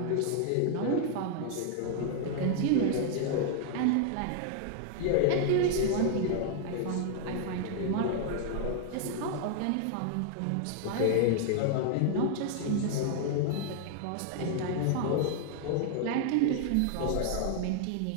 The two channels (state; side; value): different; both; correlation 0.00